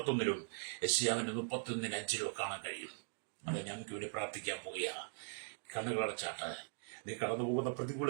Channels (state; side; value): silent; left; digital silence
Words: യെശയ്യാവിന്റെ 31:5 കാണാൻ കഴിയും. അത് ഞങ്ങൾക്ക് വേണ്ടി പ്രാർത്ഥിക്കാൻ പോവുക. കണ്ണുകളടച്ചാട്ട് നീ കടന്നു പോകുന്ന പ്രതികൂല